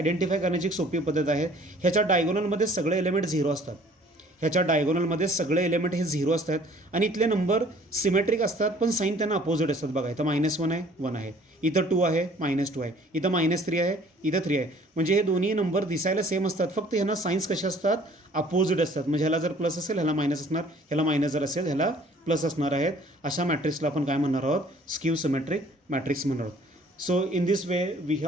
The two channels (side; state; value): both; normal; correlation 0.55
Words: करण्याची एक सोपी पद्धत आहे. ह्याच्या डायगोनलमध्ये सगळे एलिमेंट 0 असतात. ह्याच्या डायगोनलमध्ये सगळे एलिमेंट हे 0 असतात आणि इथले नंबर सिमेट्रिक असतात पण साईन त्यांना अपोजिट असतात. बघा इथं -1 आहे 1 आहे, इथं 2 आहे -2 आहे, इथं -3 आहे इथं 3 आहे. म्हणजे हे दोन्ही नंबर दिसायला सेम असतात, फक्त ह्यांना साईन्स कसे असतात, अपोजिट असतात. म्हणजे ह्याला जर प्लस असेल ह्याला मायनस असणार, ह्याला मायनस जर असेल ह्याला प्लस असणार आहेत. अशा मॅट्रिक्सला आपण काय म्हणणार आहोत, स्क्यू सिमेट्रिक मॅट्रिक्स म्हणणार आहोत. So in this way we